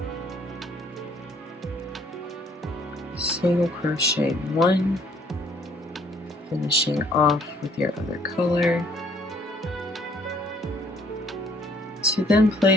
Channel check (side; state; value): both; normal; correlation 0.62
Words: Single crochet 1, finishing off with your other color, to then